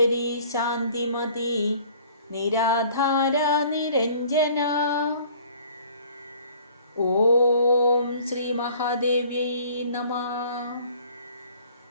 ശാന്തിമതി നിരാധാര നിരഞ്ജന. ഓം ശ്രീ മഹാദേവ്യൈ നമഃ.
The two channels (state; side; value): inverted; both; correlation -0.53